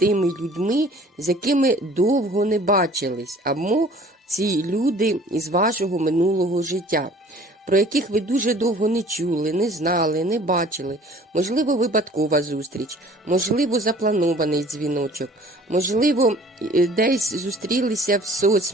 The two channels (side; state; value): both; normal; correlation 0.51